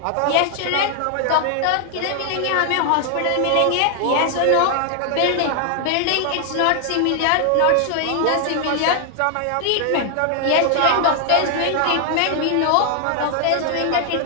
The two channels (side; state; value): both; different; correlation 0.00